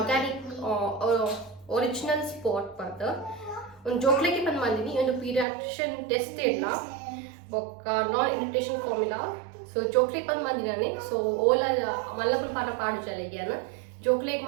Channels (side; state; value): left; drops out; at 5.5 s